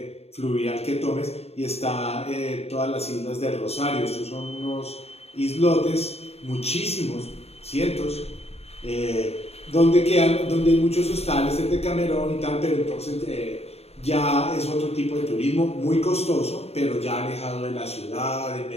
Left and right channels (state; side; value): late; right; 0.30 ms